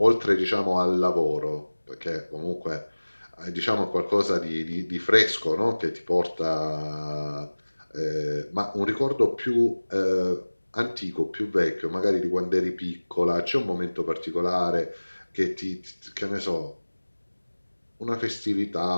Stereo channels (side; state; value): both; inverted; correlation -1.00